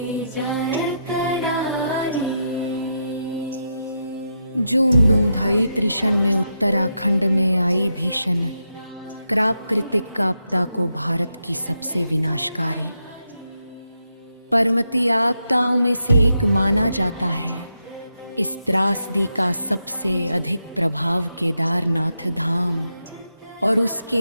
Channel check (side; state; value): both; inverted; correlation -0.83